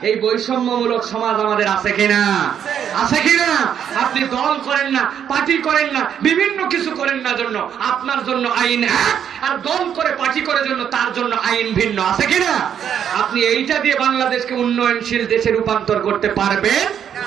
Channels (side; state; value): left; quieter; 8.8 dB